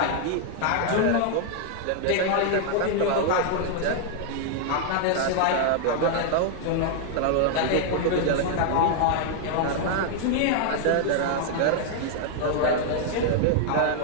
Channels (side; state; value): both; different; correlation 0.00